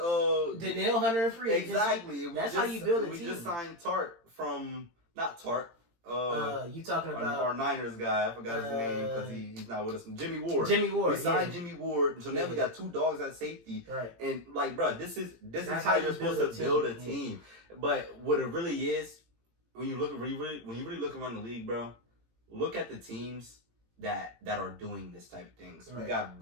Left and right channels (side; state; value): left; late; 18 ms